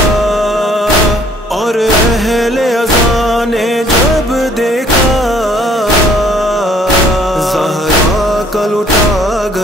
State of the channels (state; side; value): normal; both; correlation 0.60